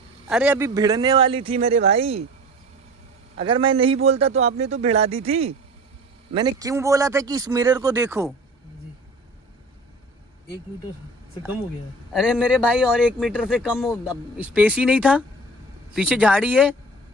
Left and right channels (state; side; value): normal; both; correlation 0.41